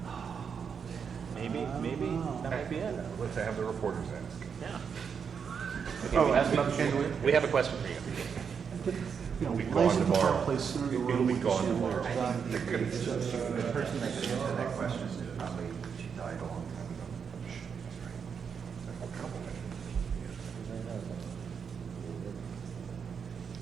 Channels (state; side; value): quieter; left; 6.6 dB